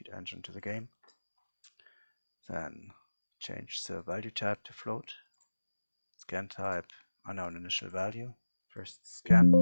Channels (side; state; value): both; inverted; correlation -1.00